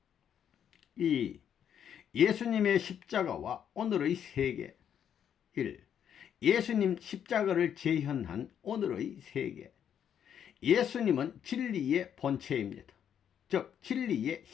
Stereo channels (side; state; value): right; quieter; 8.9 dB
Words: 2. 예수님의 십자가와 오늘의 세계. 1. 예수님 십자가를 재현한 오늘의 세계. 예수님은 진리의 본체입니다. 즉 진리의